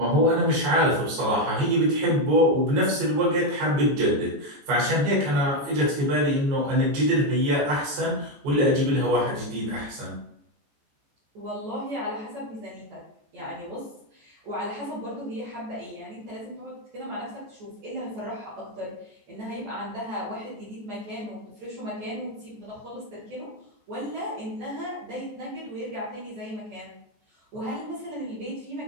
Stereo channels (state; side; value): late; left; 14 ms